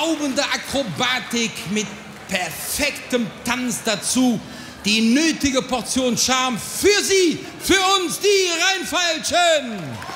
Akrobatik mit perfektem Tanz dazu, die nötige Portion Charme für Sie, für uns, die Rheinfeilchen.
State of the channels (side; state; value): both; identical; correlation 1.00